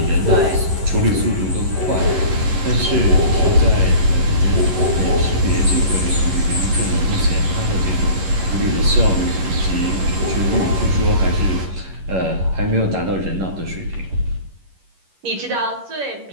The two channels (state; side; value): late; left; 11 ms